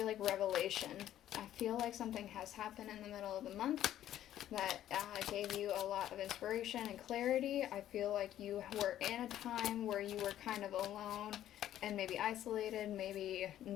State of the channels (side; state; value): right; quieter; 12.0 dB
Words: like revelation. I feel like something has happened in the middle of the month that gave you a lot of inspiration and clarity. I feel like you were in a time where you were kind of alone and maybe isolated, maybe